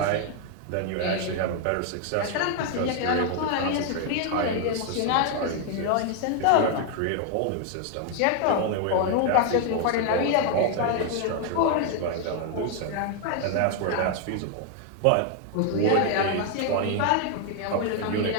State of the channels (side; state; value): both; different; correlation 0.00